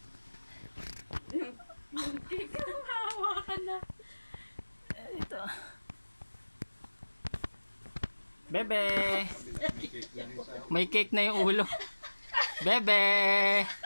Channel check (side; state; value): both; inverted; correlation -1.00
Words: Yung cake, hawakan na. Ito. Bebe! May cake na yung ulo. Bebe!